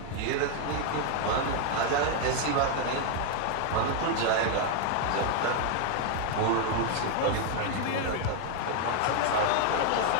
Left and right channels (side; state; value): both; different; correlation 0.00